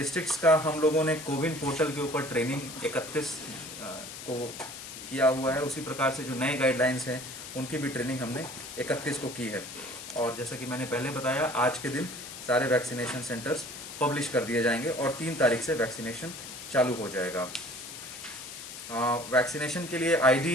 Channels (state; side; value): noise; left; hiss, 11 dB below the sound